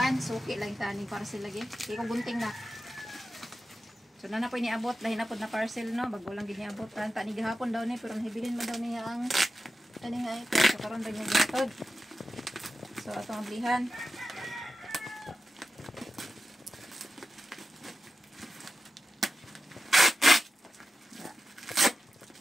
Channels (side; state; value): both; normal; correlation 0.93